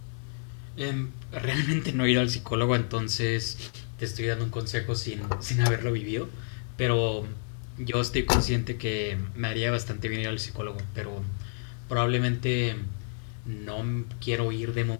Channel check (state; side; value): silent; right; digital silence